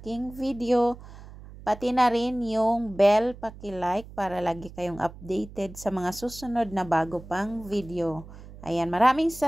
video. Pati na rin yung bell paki-like para lagi kayong updated sa mga susunod na bago pang video. Ayan, maraming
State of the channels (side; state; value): right; noise; hum, 17 dB below the sound